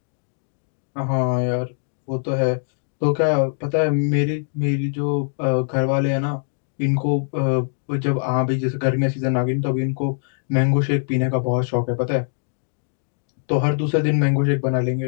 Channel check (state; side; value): silent; right; digital silence